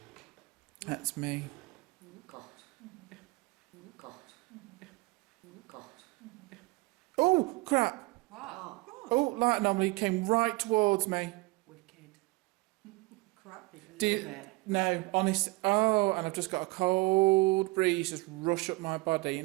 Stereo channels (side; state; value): left; quieter; 23.5 dB